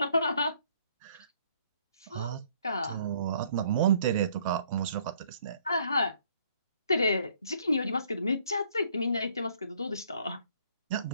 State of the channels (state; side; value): inverted; both; correlation -0.63